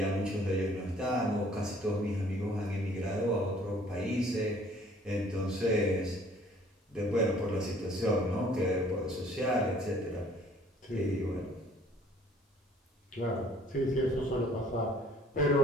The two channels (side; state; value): both; normal; correlation 0.56